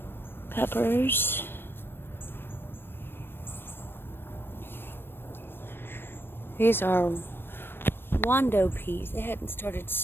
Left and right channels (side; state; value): right; late; 0.10 ms